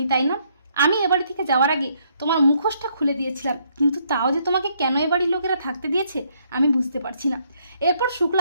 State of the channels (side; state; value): both; inverted; correlation -0.70